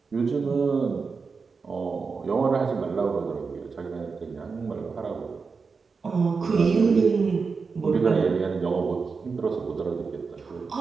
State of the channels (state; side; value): quieter; left; 4.9 dB